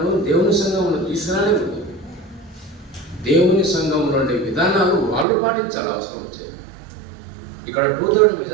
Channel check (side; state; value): left; drops out; at 5.2 s